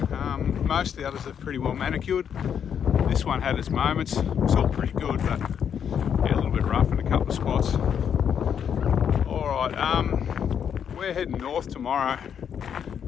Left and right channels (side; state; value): right; quieter; 8.1 dB